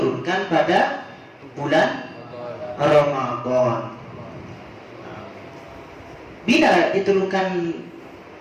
pada bulan Ramadan. Bila diturunkan,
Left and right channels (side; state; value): both; identical; correlation 1.00